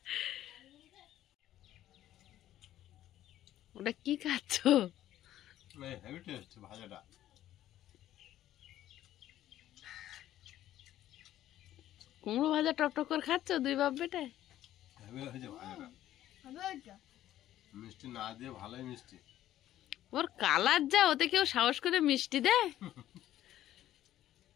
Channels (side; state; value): right; quieter; 13.0 dB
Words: ওটা কি খাচ্ছ? হেভি টেস্ট ভাজাটা। কুমড়ো ভাজা টক করে খাচ্ছ দুই বাপ বেটা? হেভি হয়েছে ভাজাটা, হবে ওইটা? মিষ্টি না দিয়ে ভালোই মিষ্টি। ওর কালার যা, ওতে কেউ সাহস করে মিষ্টি দেয়?